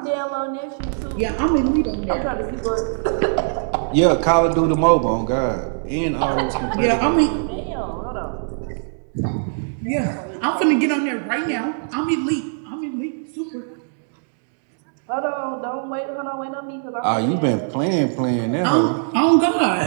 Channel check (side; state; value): left; silent; digital silence